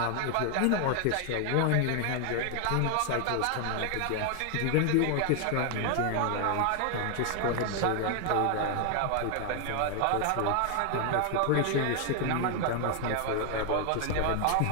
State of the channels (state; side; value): different; both; correlation 0.00